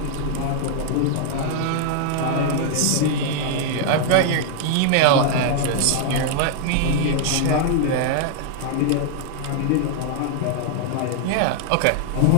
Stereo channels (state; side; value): different; both; correlation 0.00